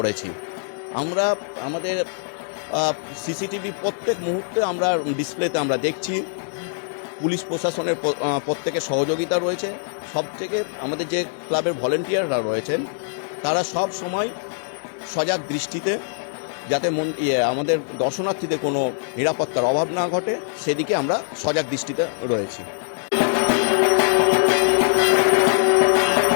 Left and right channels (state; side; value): silent; right; digital silence